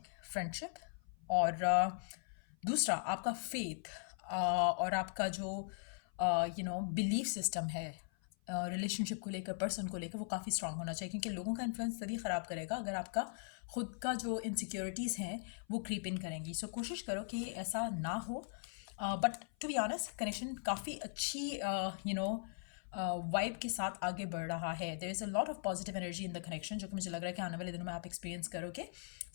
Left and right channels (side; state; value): right; silent; 51 dB below the other